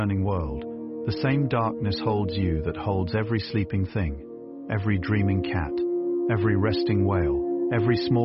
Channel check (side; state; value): both; identical; correlation 1.00